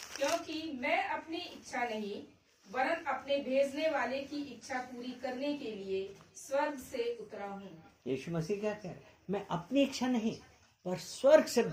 क्योंकि मैं अपनी इच्छा नहीं वरन अपने भेजने वाले की इच्छा पूरी करने के लिए स्वर्ग से उतरा हूँ। यीशु मसीह क्या कह रहे? मैं अपनी इच्छा नहीं पर स्वर्ग से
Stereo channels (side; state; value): both; identical; correlation 1.00